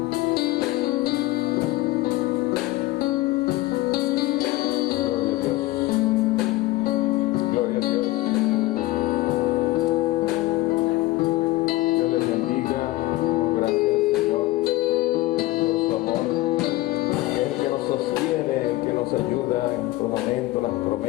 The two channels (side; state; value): right; quieter; 18.4 dB